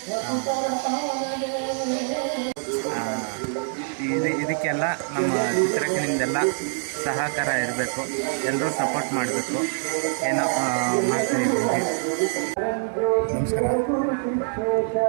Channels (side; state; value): left; silent; 62 dB below the other